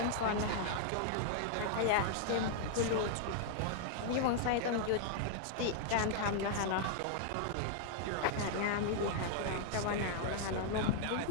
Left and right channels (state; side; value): different; both; correlation -0.01